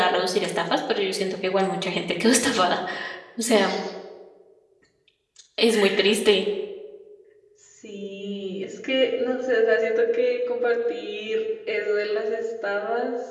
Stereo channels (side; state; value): both; identical; correlation 1.00